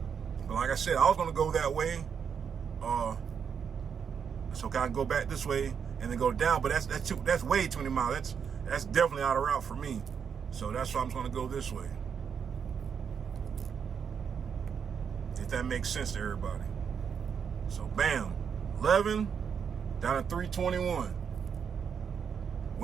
But like I said, I was gonna go that way. So I can go back this way and then go down, but that's way too many miles. That's definitely out of route for me. So that's why I'm gonna go this way. If that makes sense to everybody. So bam, 11 down to 321.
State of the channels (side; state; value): left; quieter; 7.0 dB